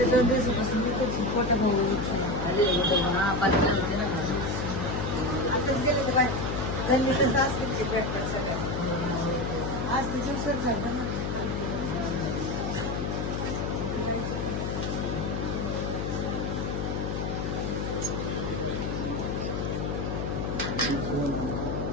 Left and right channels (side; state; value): left; noise; hum, 1 dB below the sound